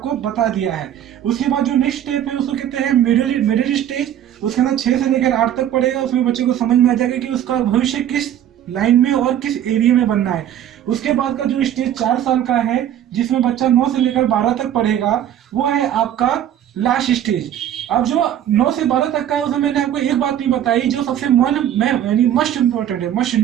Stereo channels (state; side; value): quieter; left; 10.7 dB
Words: बता दिया है। उसके बाद जो नेक्स्ट स्टेप है उसको कहते हैं मिडिल स्टेज। उसके अंदर 6 से लेकर 8 तक पढ़ेगा, उसमें बच्चे को समझ में आ जाएगा कि उसका भविष्य किस लाइन में और किस एरिया में बनना है। उसके बाद का जो स्टेज 4 साल का है, जिसमें बच्चा 9 से लेकर 12 तक पढ़ेगा, वो है आपका लास्ट स्टेज। अब जो 9 से 12 तक का है उसमें मैंने आपको एक बात नहीं बताई जो सबसे यानी मस्ट